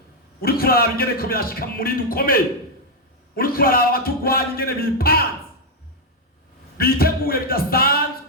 Uri kuraba ingene ko byashika muri dukomeye. Uri kuraba abatugwanya ingene bipanze biteguye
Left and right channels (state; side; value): normal; both; correlation 0.00